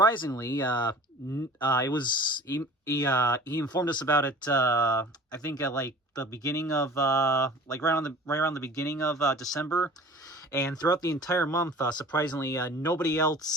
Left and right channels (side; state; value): both; normal; correlation 0.44